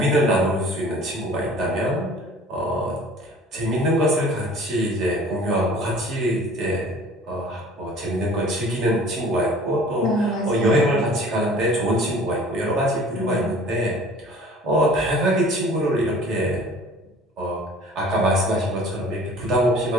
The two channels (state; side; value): normal; both; correlation 0.48